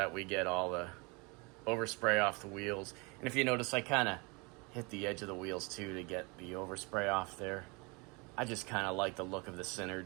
we get all the overspray off the wheels. And if you notice, I kind of hit the edge of the wheels too to get the overspray off there. I just kind of like the look of the centered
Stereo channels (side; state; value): left; quieter; 28.6 dB